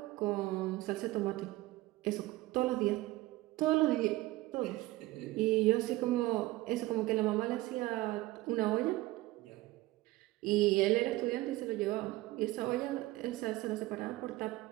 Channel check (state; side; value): quieter; left; 18.6 dB